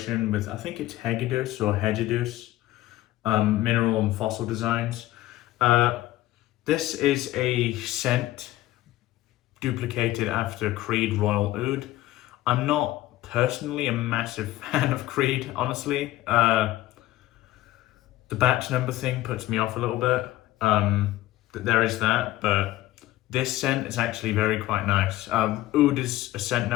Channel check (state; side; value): quieter; right; 15.7 dB